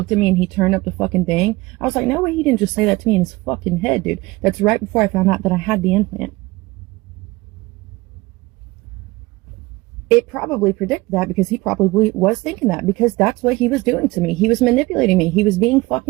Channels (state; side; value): quieter; left; 21.3 dB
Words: at me and he turned up the fucking thing. I was like, no way, he didn't just say that to me in his fucking head, dude. That's right before I found out that I had the implant. It probably predicted that, because he probably was thinking that, because that's what he was doing to me. He was manipulating me. He was being